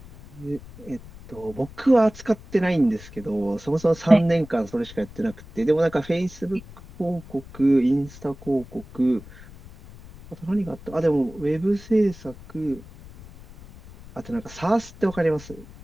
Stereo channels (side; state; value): left; noise; rumble, 19 dB below the sound